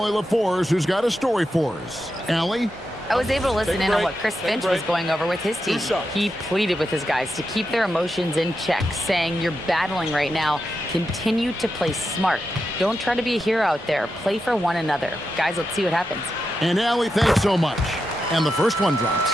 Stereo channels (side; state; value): both; normal; correlation 0.87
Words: LaForce, who's got a story for us. Allie? I was able to listen in on what Chris Finch was going over with his team. He pleaded with his guys to keep their emotions in check, saying, you're battling right now. Continue to play smart. Don't try to be a hero out there. Play for one another. Guys, let's see what happens. And Allie, thanks so much. And the first one drops.